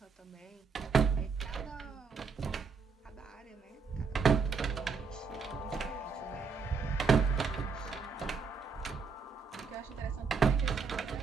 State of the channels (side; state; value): left; quieter; 5.2 dB